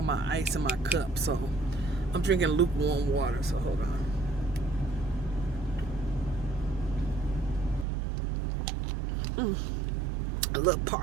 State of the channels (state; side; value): drops out; left; at 7.9 s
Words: my ice in my cup, so I'm drinking lukewarm water, so hold on. A little